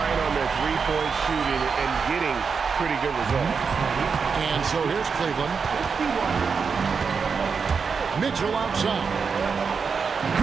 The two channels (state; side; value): quieter; left; 5.6 dB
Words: on their three-point shooting and getting pretty good results. And so here's Cleveland. Mitchell outside.